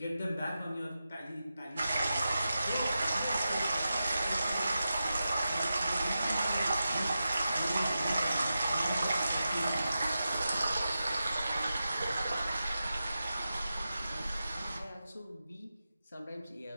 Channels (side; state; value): both; inverted; correlation -0.91